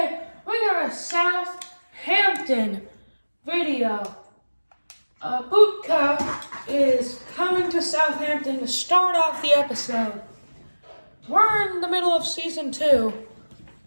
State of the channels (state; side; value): inverted; both; correlation -1.00